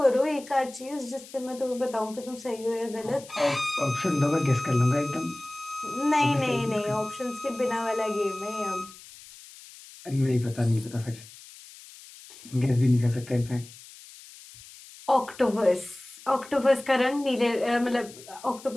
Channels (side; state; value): left; noise; hiss, 19 dB below the sound